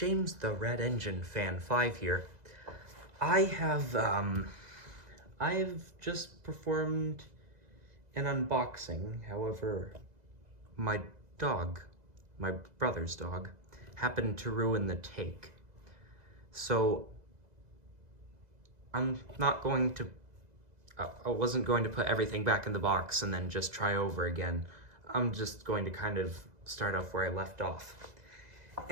the Red Engine Fan 5 here. I've just performed an unboxing. However, my brother's dog, happened to ruin the take. So I'm not going to, I wasn't going to put everything back in the box and then just try over again. I'm just going to kind of start off where I left off.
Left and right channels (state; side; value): late; left; 2.0 ms